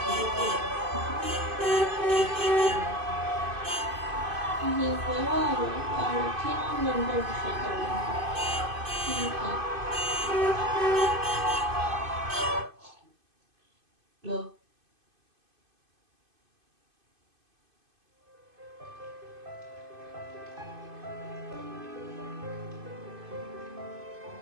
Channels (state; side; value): late; left; 2.5 ms